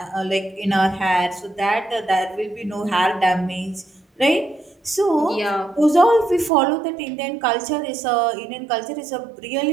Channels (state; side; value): drops out; left; at 6.5 s